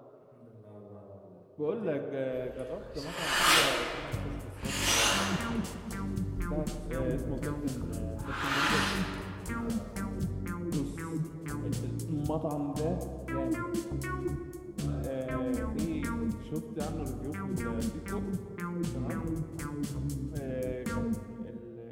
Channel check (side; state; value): both; identical; correlation 1.00